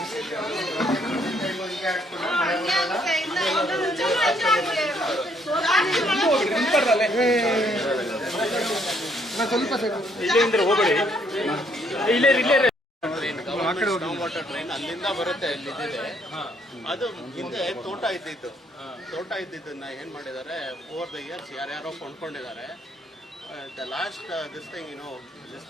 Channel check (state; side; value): normal; both; correlation 0.68